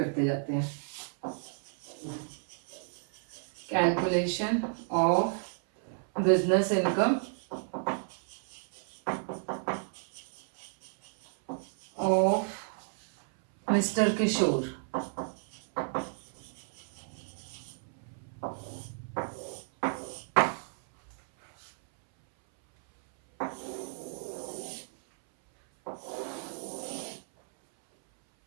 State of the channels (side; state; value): left; silent; 56 dB below the other